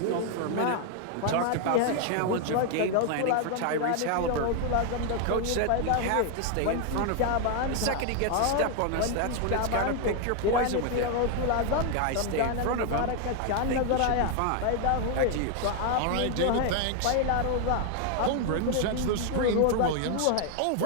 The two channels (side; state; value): both; different; correlation 0.00